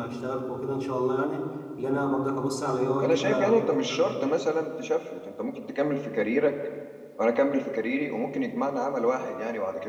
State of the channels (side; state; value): both; identical; correlation 1.00